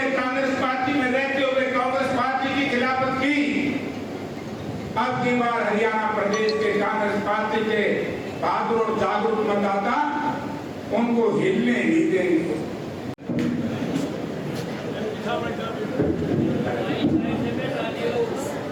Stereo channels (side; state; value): both; identical; correlation 1.00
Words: कांग्रेस पार्टी में रहते हुए कांग्रेस पार्टी की खिलाफत की, अब की बार हरियाणा प्रदेश के कांग्रेस पार्टी के बहादुर और जागरूक मतदाता उनको हिलने नहीं देंगे।